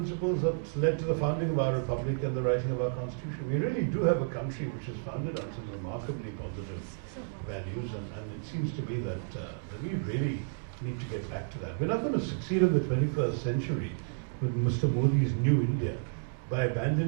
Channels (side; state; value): left; silent; digital silence